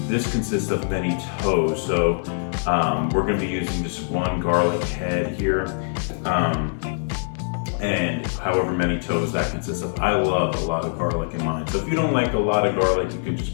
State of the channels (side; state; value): right; silent; digital silence